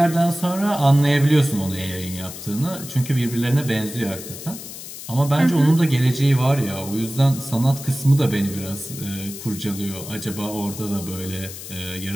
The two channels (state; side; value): noise; left; hiss, 12 dB below the sound